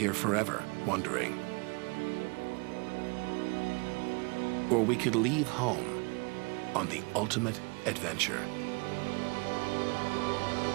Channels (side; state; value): left; quieter; 31.1 dB